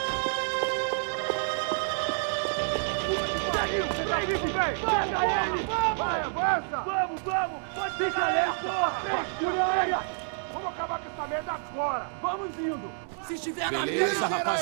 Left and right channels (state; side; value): silent; left; digital silence